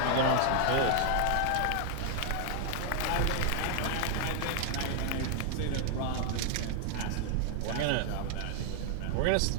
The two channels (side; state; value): both; different; correlation -0.01